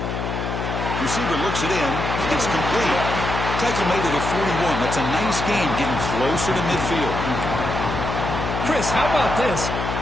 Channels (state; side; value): noise; left; hum, 3 dB below the sound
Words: Receiver looks it in. It's complete. Tackle made at the 41. That's a nice gain, getting closer to midfield. Chris, how about this?